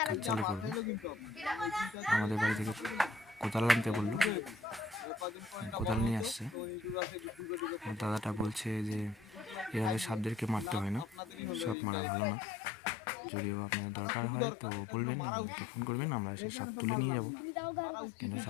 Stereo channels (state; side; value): drops out; right; at 11.8 s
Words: কাজ চালু করবে। আমাদের বাড়ি থেকে কোদাল আনতে বললো, কোদাল নিয়ে আসছে। দাদাটা বলছে যে এভাবে সাপদেরকে মারতে হয় না, সাপ মারা ভালো না। যদিও আপনার দরকার হয় তো বলবেন, আমাকে ফোন করবেন, আমরা এসে সাপ তুলে নিয়ে যাব, কিন্তু